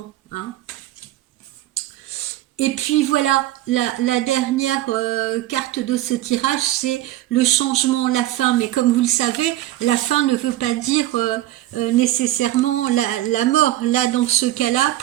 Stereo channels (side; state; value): left; quieter; 14.8 dB